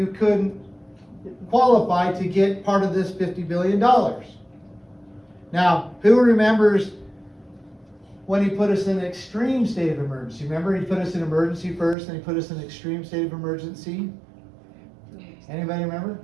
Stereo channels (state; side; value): drops out; left; at 12.0 s